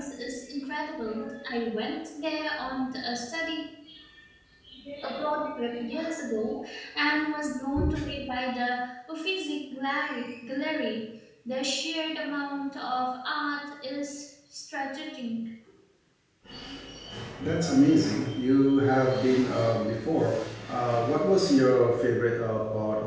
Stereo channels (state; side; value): identical; both; correlation 1.00